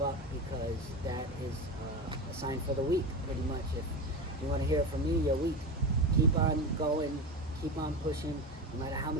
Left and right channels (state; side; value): normal; both; correlation 0.23